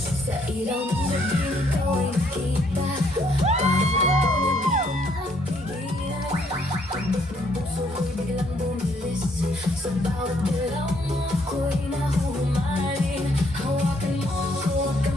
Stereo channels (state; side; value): normal; both; correlation 0.68